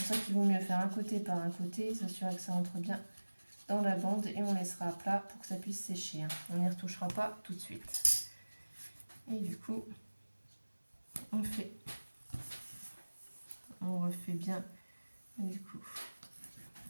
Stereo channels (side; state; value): both; inverted; correlation -1.00